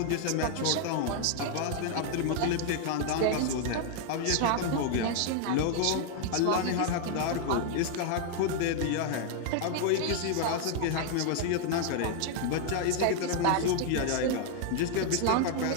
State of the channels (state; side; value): different; both; correlation 0.00